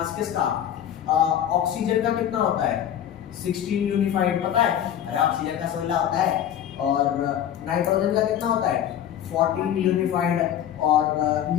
किसका? ऑक्सीजन का कितना होता है? 16 यूनिफाइड, पता है? अरे ऑक्सीजन का 16 होता है। और नाइट्रोजन का कितना होता है? 14 यूनिफाइड। और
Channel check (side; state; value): right; quieter; 10.2 dB